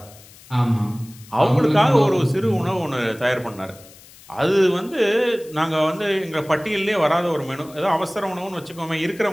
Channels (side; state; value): left; noise; hiss, 22 dB below the sound